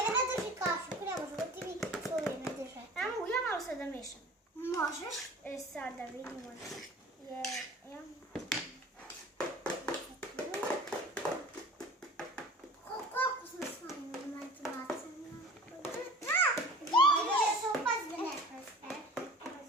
drži kašu, ne može da ti mi svoje ne drže. Ja malo sad da mešam. Možeš? Sad da vidimo. Koliko sam s vama imati bacana? Da se upazbe ne preste.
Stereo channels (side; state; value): both; normal; correlation 0.42